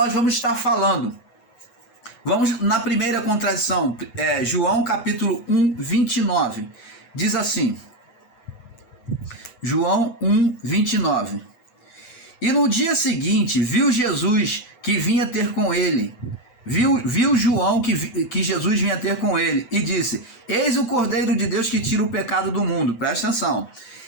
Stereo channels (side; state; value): right; late; 8.0 ms